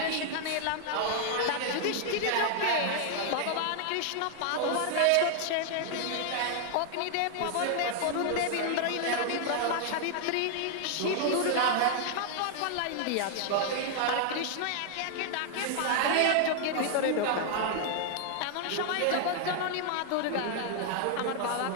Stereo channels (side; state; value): both; different; correlation 0.00